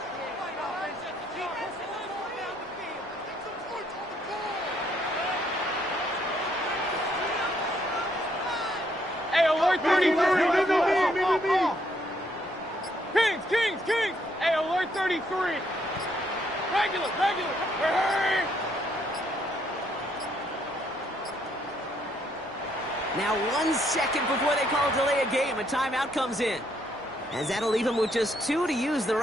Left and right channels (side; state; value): both; normal; correlation 0.71